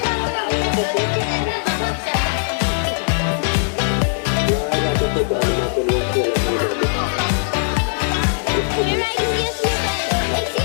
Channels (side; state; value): right; silent; digital silence